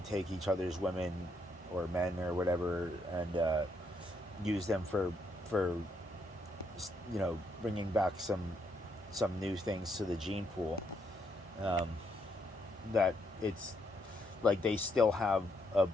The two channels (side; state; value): both; normal; correlation 0.75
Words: each other's women or men or whatever and use them for bringing back some new things to the gene pool, that it's like they still have a